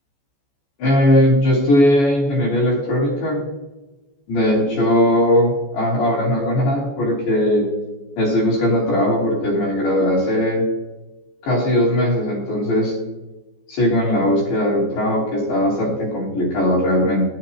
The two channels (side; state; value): right; late; 14 ms